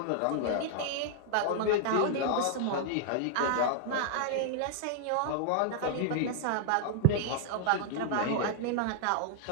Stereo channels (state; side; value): different; both; correlation -0.01